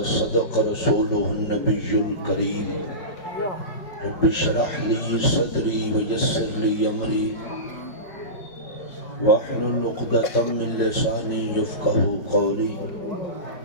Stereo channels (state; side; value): late; right; 4.8 ms